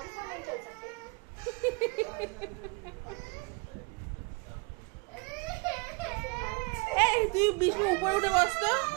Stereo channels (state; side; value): quieter; left; 30.2 dB